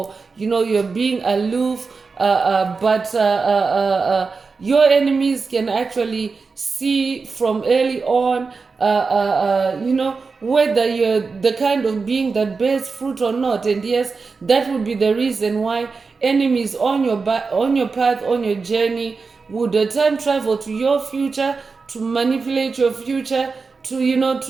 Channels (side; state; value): left; quieter; 4.6 dB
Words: you're being aloof, but your enemies can actually see from early on whether you're the kind of being that bears fruit or not. And yes, that would be the reason why enemies on your path, on your journey, would time travel to your future to manipulate your future, to